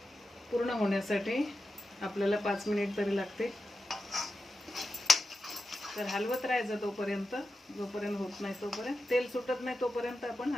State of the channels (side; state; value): both; normal; correlation 0.90